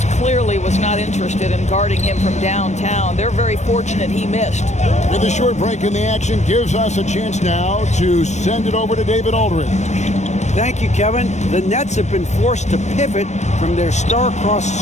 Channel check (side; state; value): right; late; 0.34 ms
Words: clearly was not interested in guarding him from downtown. They're very fortunate he missed. With a short break in the action gives us a chance now to send it over to David Aldridge. Thank you, Kevin. The Nets have been forced to pivot from their star-crossed